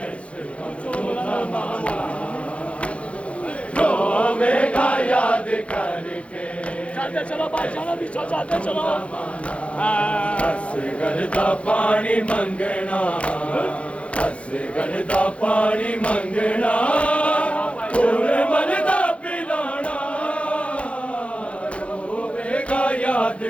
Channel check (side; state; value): right; late; 0.062 ms